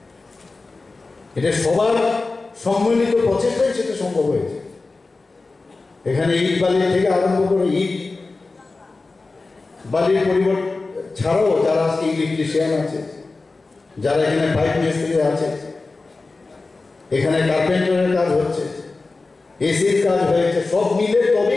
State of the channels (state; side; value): quieter; right; 3.6 dB